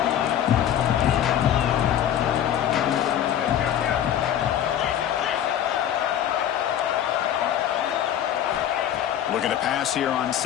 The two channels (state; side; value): quieter; right; 10.5 dB